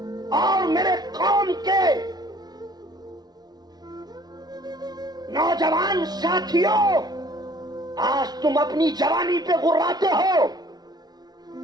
और मेरे कौम के नौजवान साथियों, आज तुम अपनी जवानी पे गुर्राते हो,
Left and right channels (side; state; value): left; late; 0.19 ms